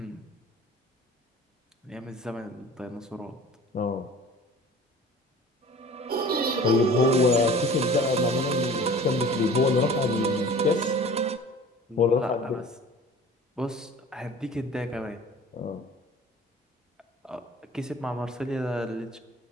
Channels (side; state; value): both; normal; correlation 0.43